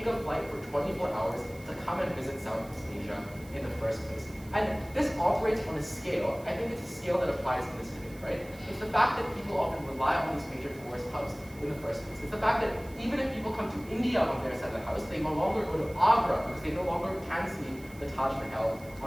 a flight for 24 hours to come and visit Southeast Asia in the first place. And this operates on a scale, I think it's a scale that applies in this debate, right? It's the fact that people often rely on these major tourist hubs in the first place. It's the fact that even if people come to India on their side of the house, they no longer go to Agra because they no longer can see the Taj Mahal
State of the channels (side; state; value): right; noise; hiss, 22 dB below the sound